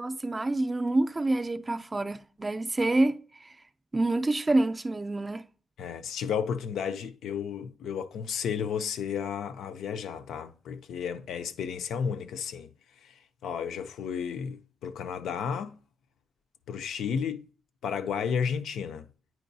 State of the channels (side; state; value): both; normal; correlation 0.83